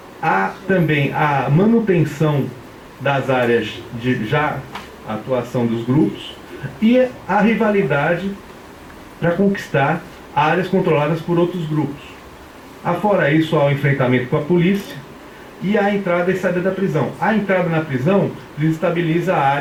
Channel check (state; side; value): identical; both; correlation 1.00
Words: Há também a manutenção das áreas de já atuação dos grupos, e a rivalidade para conquistar áreas controladas por outros grupos. Afora isso, há o enfrentamento com a polícia e a entrada e saída da prisão. A entrada na prisão desestabiliza